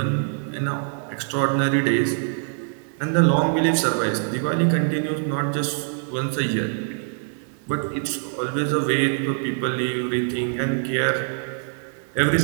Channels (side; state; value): left; silent; 63 dB below the other